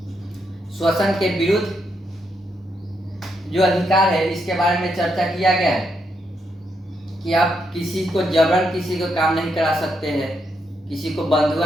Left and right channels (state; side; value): normal; both; correlation 0.79